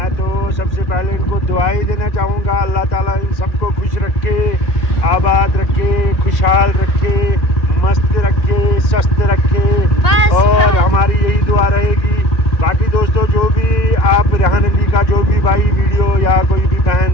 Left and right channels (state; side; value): late; right; 2.1 ms